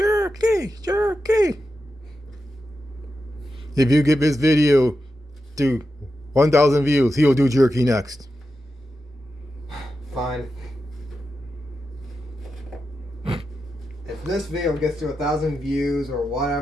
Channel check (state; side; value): normal; both; correlation 0.89